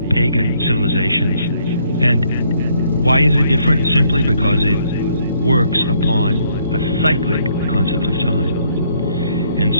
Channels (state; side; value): inverted; both; correlation -0.68